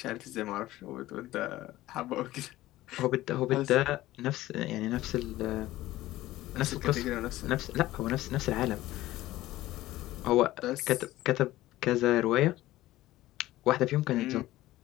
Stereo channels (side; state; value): right; quieter; 16.2 dB